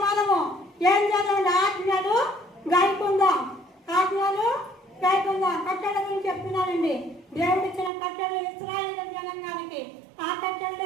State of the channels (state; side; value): drops out; left; at 7.9 s